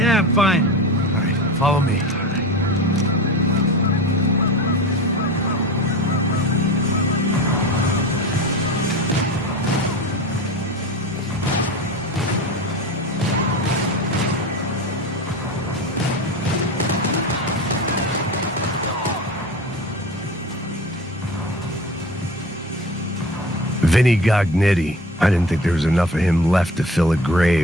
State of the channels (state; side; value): normal; both; correlation 0.32